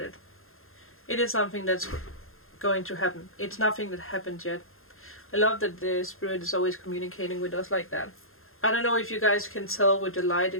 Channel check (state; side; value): late; right; 0.61 ms